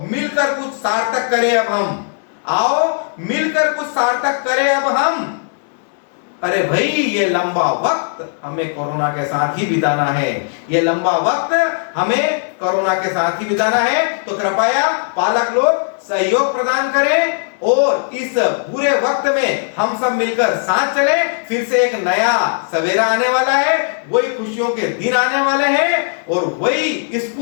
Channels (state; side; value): silent; right; 60 dB below the other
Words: मिलकर कुछ सार्थक करें अब हम, आओ मिलकर कुछ सार्थक करें अब हम। अरे भाई, ये लंबा वक्त हमें कोरोना के साथ ही बिताना है, ये लंबा वक्त हमें कोरोना के साथ ही बिताना है। तो कृपया पालक लोग सहयोग प्रदान करें और इस बुरे वक्त में हम सब मिलकर साथ चलें। फिर से एक नया सवेरा आने वाला है, वही खुशियों के दिन आने वाले हैं, और वही